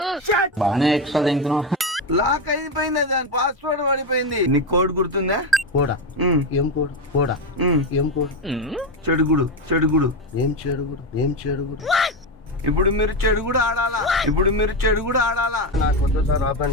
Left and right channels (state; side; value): normal; both; correlation 0.13